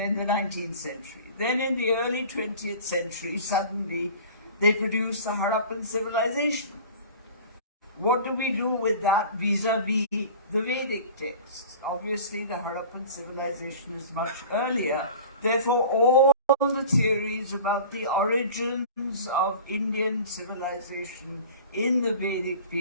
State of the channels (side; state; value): both; inverted; correlation -0.40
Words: century, then in the early 20th century, suddenly they produced the Harappan civilization. What do we do with that vis-a-vis the Vedic texts? Obviously, the Harappan civilization is much earlier. Therefore, all the theories about the origins of Indian civilization in the Vedic